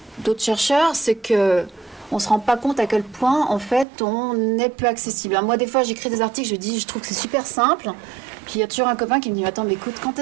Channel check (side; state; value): left; drops out; at 3.9 s